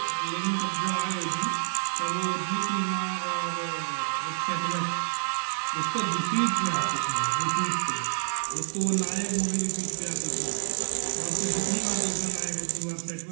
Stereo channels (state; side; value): silent; left; digital silence